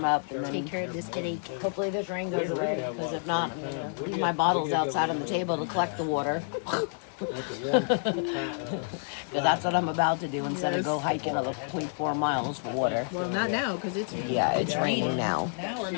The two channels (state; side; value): silent; right; digital silence